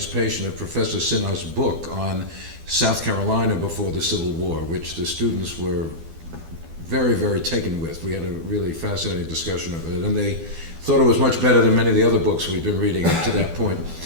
of Professor Sinha's book on South Carolina before the Civil War, which the students were very, very taken with. We had a really fascinating discussion of it, and they thought it was much better than many of the other books we'd been reading up to that point.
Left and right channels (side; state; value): left; late; 12 ms